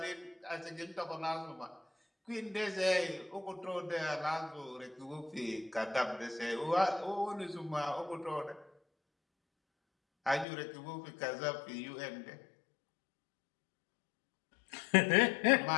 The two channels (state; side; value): drops out; right; at 10.5 s